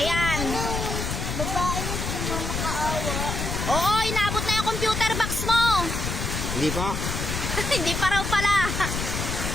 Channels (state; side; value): noise; left; rumble, 3 dB below the sound